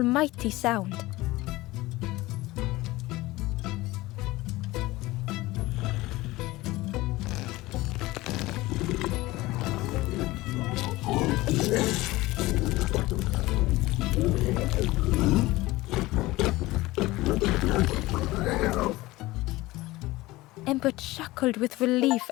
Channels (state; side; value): quieter; right; 19.3 dB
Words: sound. Ember chuckled with relief